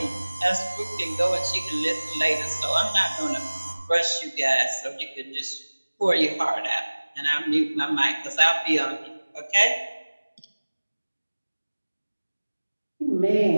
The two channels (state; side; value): inverted; both; correlation -1.00